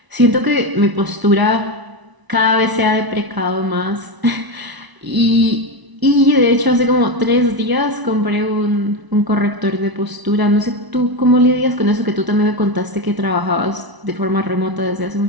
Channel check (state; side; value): late; left; 1.0 ms